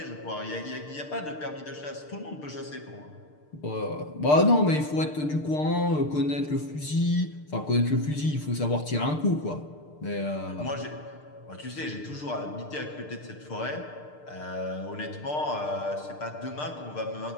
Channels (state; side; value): late; right; 6.7 ms